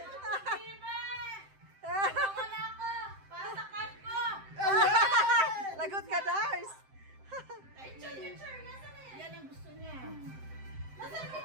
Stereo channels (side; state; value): left; late; 7.7 ms